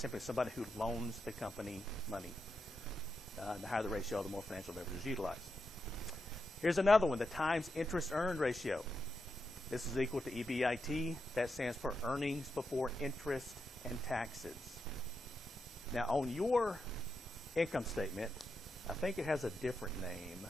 somebody who loans the company money. The higher the ratio, the more financial leverage is utilized. Here's another one, the times interest earned ratio. This is equal to EBIT. That stands for earnings before interest and taxes. Now, on your income statement, I think it has a different name.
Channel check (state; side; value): normal; both; correlation 0.86